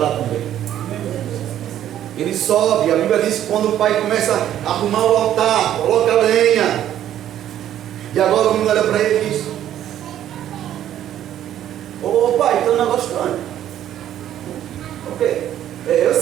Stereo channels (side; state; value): left; quieter; 11.4 dB